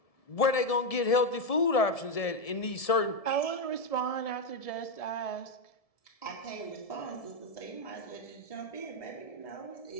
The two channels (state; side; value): late; right; 1.7 ms